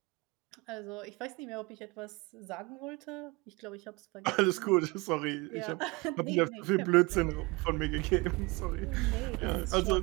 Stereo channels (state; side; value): quieter; left; 25.4 dB